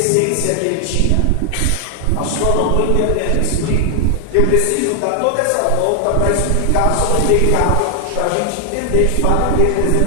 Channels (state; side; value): different; both; correlation 0.00